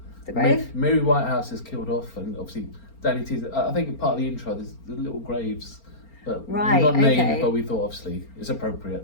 the grave? Mary Whitehouse is killed off, and obviously Danny T's, I think part of the intro, there's the little graves but Right, not named, okay. but we thought obviously it's appropriate.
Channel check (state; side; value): late; right; 4.4 ms